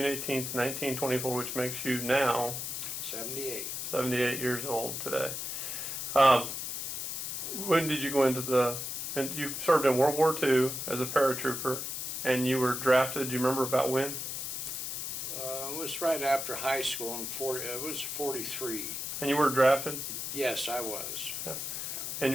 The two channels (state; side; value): noise; left; hiss, 4 dB below the sound